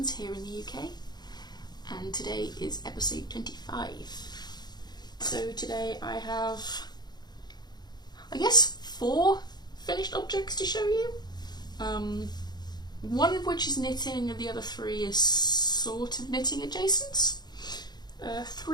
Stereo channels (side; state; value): right; late; 0.20 ms